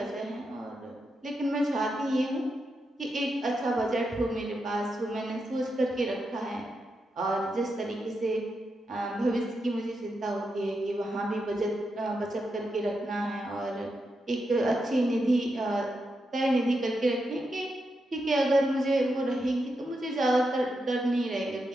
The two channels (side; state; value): both; normal; correlation 0.85